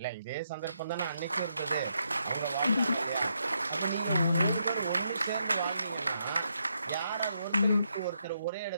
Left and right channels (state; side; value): inverted; both; correlation -0.79